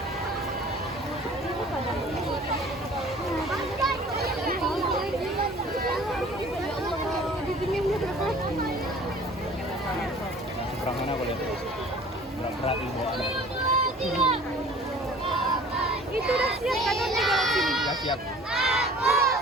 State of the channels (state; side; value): normal; both; correlation 0.48